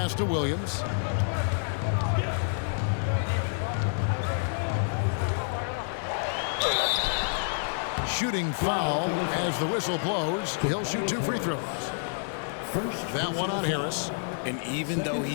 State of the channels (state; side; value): silent; right; digital silence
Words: to Williams. Shooting foul as the whistle blows. He'll shoot 2 free throws. That one on Harris. And even though he